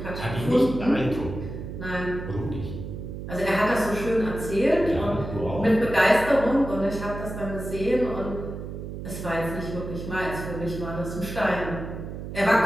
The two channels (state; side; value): noise; right; hum, 8 dB below the sound